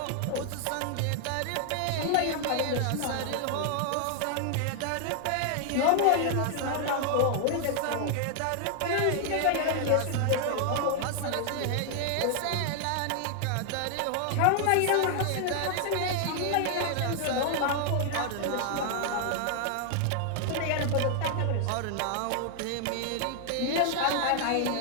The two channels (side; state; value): both; different; correlation 0.00